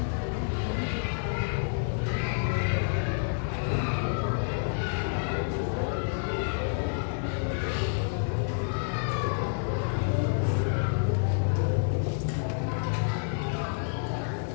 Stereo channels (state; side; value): silent; right; digital silence